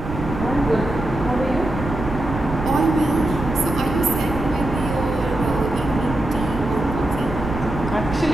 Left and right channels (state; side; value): noise; right; rumble, 8 dB below the sound